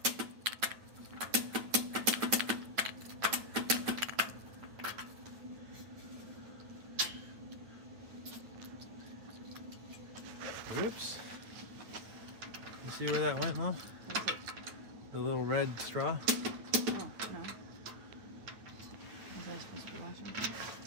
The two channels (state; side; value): late; left; 9.3 ms